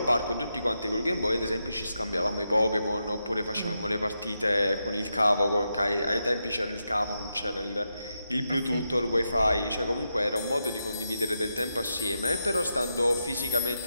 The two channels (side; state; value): both; inverted; correlation -0.86